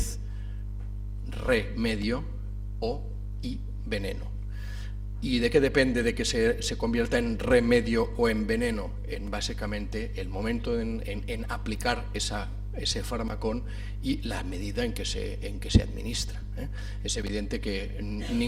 remedio y veneno. ¿Y de qué depende de que se convierta en remedio o en veneno? En básicamente el momento en aplicar ese farmacón y la medida en que se administra. Es evidente que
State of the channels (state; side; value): identical; both; correlation 1.00